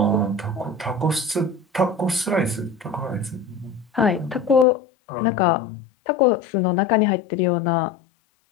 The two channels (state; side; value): drops out; right; at 4.7 s